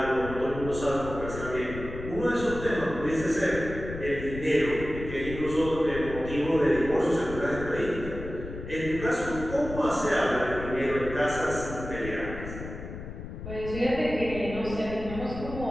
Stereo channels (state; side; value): noise; left; rumble, 9 dB below the sound